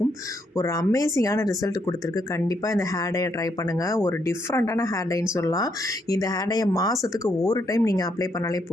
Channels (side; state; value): both; normal; correlation 0.75